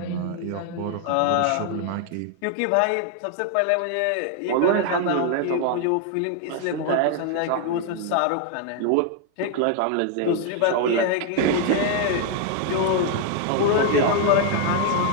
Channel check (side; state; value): both; different; correlation 0.00